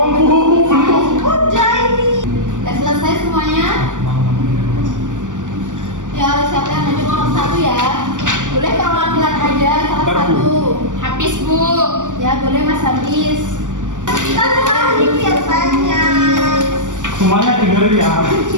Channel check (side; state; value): left; late; 0.87 ms